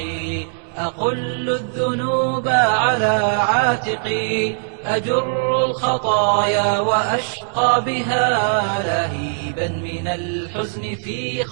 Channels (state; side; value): silent; left; 66 dB below the other